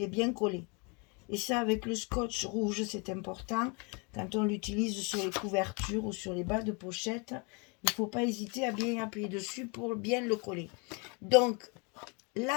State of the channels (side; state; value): right; quieter; 32.1 dB